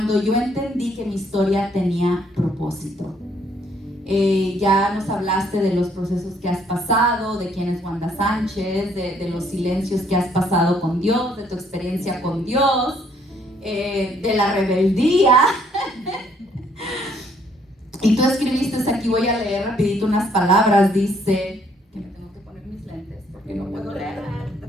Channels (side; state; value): both; normal; correlation 0.66